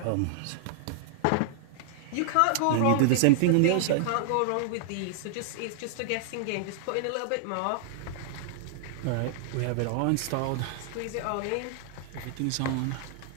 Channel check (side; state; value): both; different; correlation -0.01